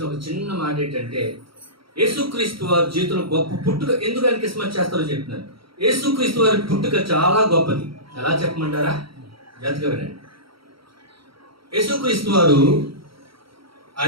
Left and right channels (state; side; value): late; left; 0.75 ms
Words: ఒక చిన్న మాట ఏంటంటే, యేసుక్రీస్తు వారి జీవితంలో గొప్ప పుట్టుక. ఎందుకు ఆయన క్రిస్మస్ చేస్తారో చెప్తున్నారు. యేసుక్రీస్తు వారి పుట్టుక చాలా గొప్పది. ఎలా చెప్పమంటారా? జాగ్రత్తగా వినండి. యేసుక్రీస్తు వారు